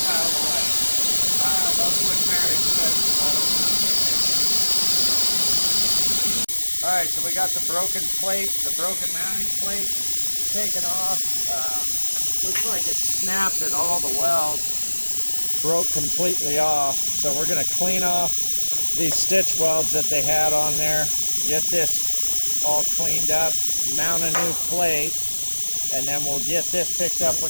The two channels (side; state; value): both; inverted; correlation -1.00